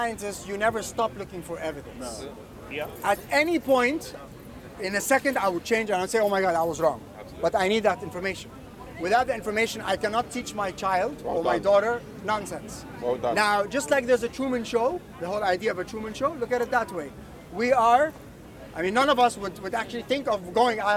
you never stop looking for evidence. Yeah. At any point, in a second, I would change and I'd say, "Oh my God, I was wrong." But I need that information. Without the information, I cannot teach my child or my daughter nonsense. Well done. Now, just like there's a Truman Show, the whole idea of a Truman Show, look at it that way. We are, I mean, none of us would actually think of going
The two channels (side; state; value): both; identical; correlation 1.00